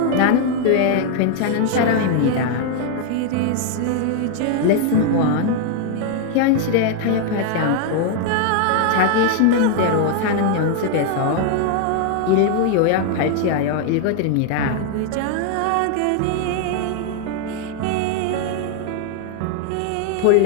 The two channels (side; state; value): both; different; correlation 0.00